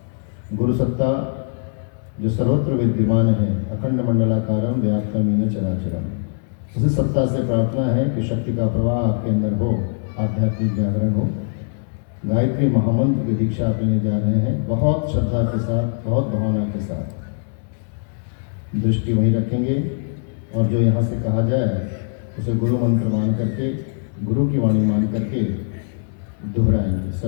गुरु सत्ता जो सर्वत्र विद्यमान है, अखंड मंडलाकारम व्याप्तमीन चराचरम, उसी सत्ता से प्रार्थना है कि शक्ति का प्रवाह आपके अंदर हो, आध्यात्मिक जागरण हो। गायत्री महामंत्र की दीक्षा आप लेने जा रहे हैं। बहुत श्रद्धा के साथ, बहुत भावना के साथ दृष्टि वहीं रखेंगे और जो यहाँ से कहा जाए उसे गुरु मंत्र मान करके, गुरु की वाणी मान करके दोहराएंगे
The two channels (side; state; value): right; silent; 65 dB below the other